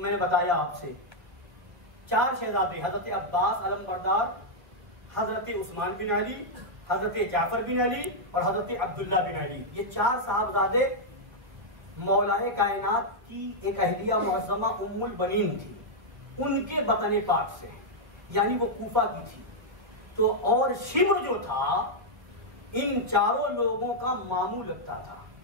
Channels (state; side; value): late; left; 1.3 ms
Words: बताया आपसे, 4 शहजादे, हजरत अब्बास अलमबरदार, हजरत उस्मान बिन अली, हजरत जाफर बिन अली और हजरत अब्दुल्ला बिन अली, ये 4 साहबजादे मौलाए कायनात की एक अहलिया मुअज़्ज़मा उम्मुल बनीन थी, उनके बतने पाक से, यानी वो कूफा की थी। तो और शिम्र जो था इन चारों लोगों का मामू लगता था।